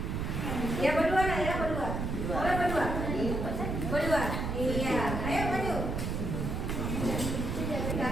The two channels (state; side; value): noise; right; rumble, 2 dB below the sound